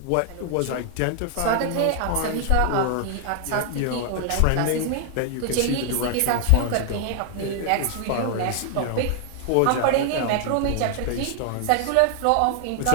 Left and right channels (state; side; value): different; both; correlation 0.00